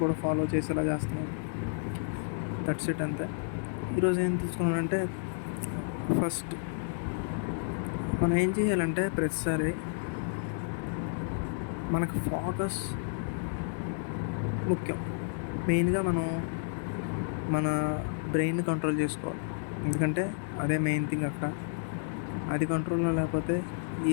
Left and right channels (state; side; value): silent; right; digital silence